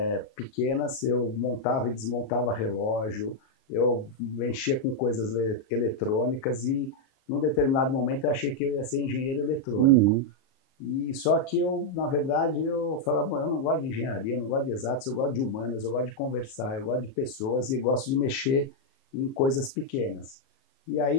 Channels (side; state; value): right; late; 37 ms